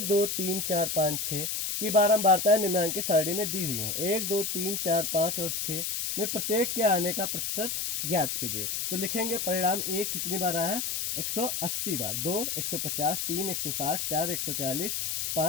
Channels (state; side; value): noise; left; hiss, 1 dB below the sound